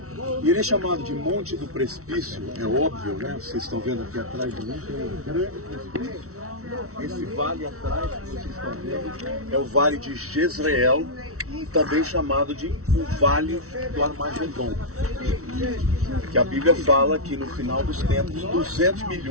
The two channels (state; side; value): late; left; 0.64 ms